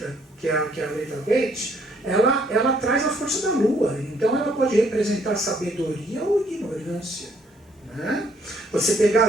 que é a letra Bet, ela traz a força da Lua. Então ela pode representar sabedoria ou ignorância. Né? Você pegar a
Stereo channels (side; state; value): both; normal; correlation 0.66